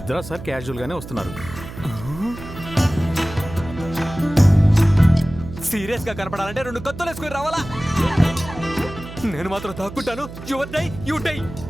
సార్ క్యాజువల్గానే వస్తున్నారు. సీరియస్గా కనపడాలంటే 2 కత్తులు వేసుకుని రావాలా? నేను మాత్రం తాక్కుంటాను. Your die you die.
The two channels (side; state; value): right; noise; hum, 13 dB below the sound